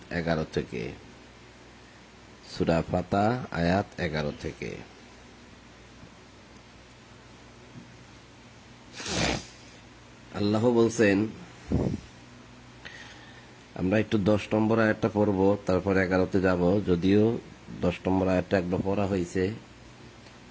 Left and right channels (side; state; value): both; identical; correlation 1.00